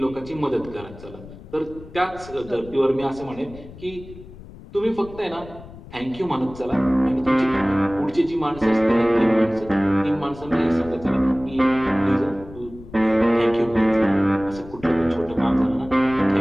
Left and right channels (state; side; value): noise; left; rumble, 17 dB below the sound